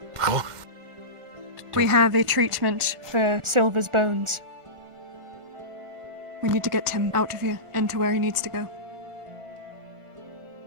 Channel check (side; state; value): left; late; 1.5 ms